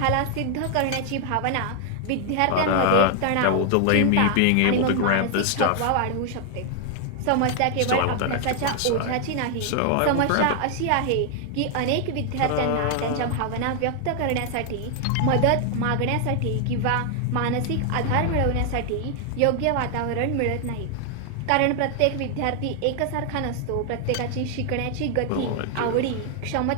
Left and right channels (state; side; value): different; both; correlation 0.00